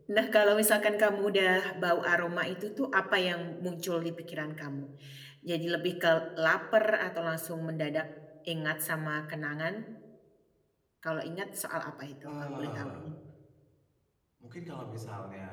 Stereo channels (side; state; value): both; identical; correlation 1.00